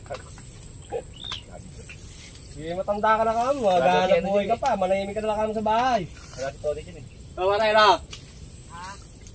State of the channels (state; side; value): identical; both; correlation 1.00